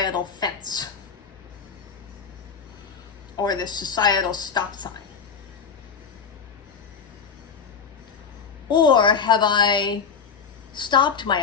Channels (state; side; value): quieter; right; 6.2 dB